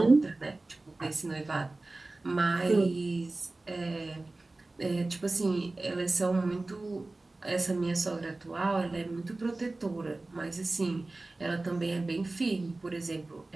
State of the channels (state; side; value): quieter; left; 3.1 dB